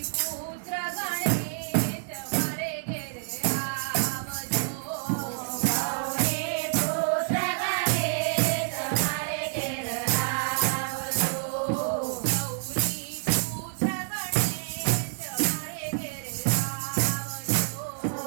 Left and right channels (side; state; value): left; silent; digital silence